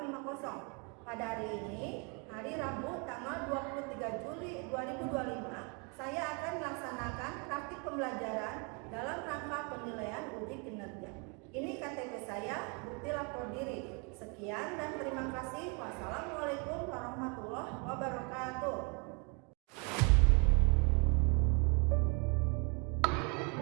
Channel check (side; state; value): left; quieter; 33.7 dB